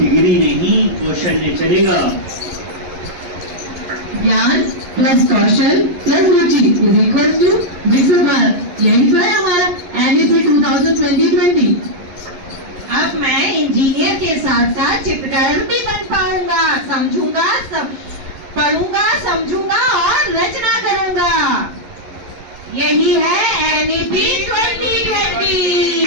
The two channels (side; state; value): left; late; 11 ms